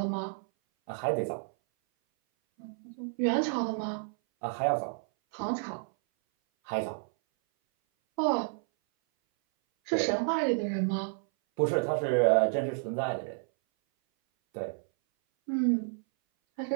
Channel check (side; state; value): left; silent; 57 dB below the other